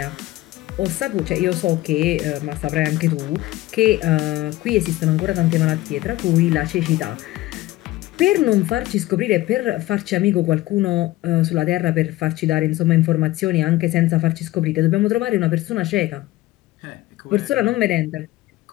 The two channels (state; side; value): quieter; right; 17.1 dB